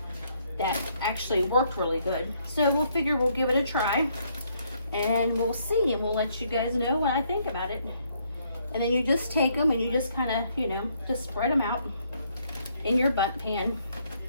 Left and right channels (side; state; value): both; inverted; correlation -0.70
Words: that actually worked really good. So we'll figure we'll give it a try, and we'll see, and we'll let you guys know what I think about it. And then you just take them and you just kind of, you know, just spread them out in your bundt pan.